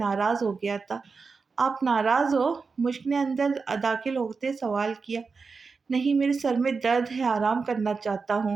ہو گیا تھا۔ آپ ناراض ہو؟ مشک نے اندر داخل ہوتے سوال کیا۔ نہیں، میرے سر میں درد ہے، آرام کرنا چاہتا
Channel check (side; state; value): left; quieter; 4.7 dB